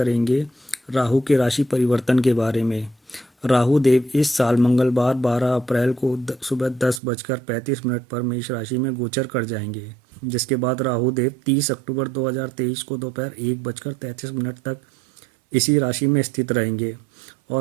राहु के राशि परिवर्तन के बारे में। राहु देव इस साल मंगलवार 12 अप्रैल को सुबह 10:35 पर मेष राशि में गोचर कर जाएंगे, जिसके बाद राहु देव 30 अक्टूबर 2023 को दोपहर 1:33 तक इसी राशि में स्थित रहेंगे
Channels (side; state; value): left; drops out; at 7.0 s